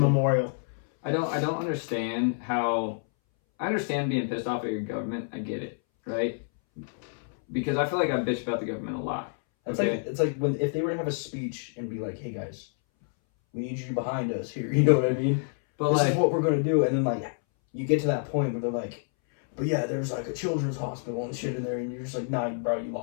I don't understand how. I understand being pissed off at your government. I get it, right? Because I feel like I bitch about the government a lot. It's Okay. like when if they were to have a speech and be like, "Hey guys, we need you behind us here." You know what I mean? But This like, is what we're gonna do, and then like you get to that point where they're like, "But yeah, there's like a children's hospital and shit in there," and you're just like, "Nah, bro, you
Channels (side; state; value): right; silent; 59 dB below the other